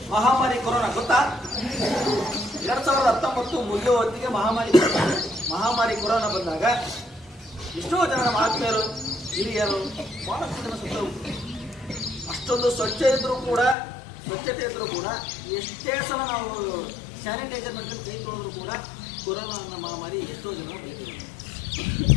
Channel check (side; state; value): right; drops out; at 13.8 s